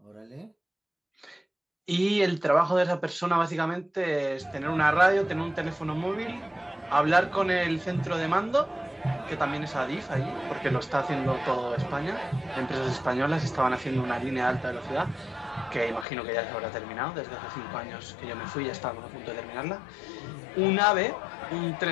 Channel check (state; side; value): drops out; right; at 16.1 s